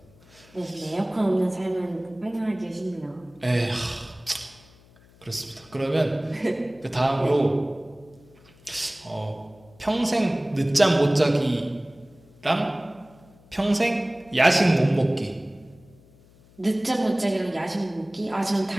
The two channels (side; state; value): left; noise; hum, 27 dB below the sound